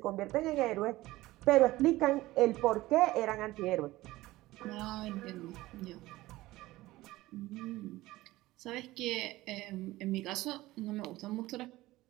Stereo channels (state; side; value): quieter; left; 17.9 dB